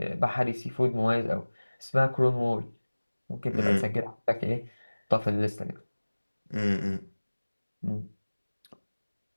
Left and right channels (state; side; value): inverted; both; correlation -1.00